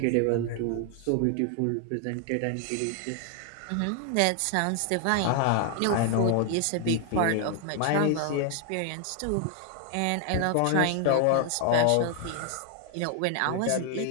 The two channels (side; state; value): both; different; correlation 0.00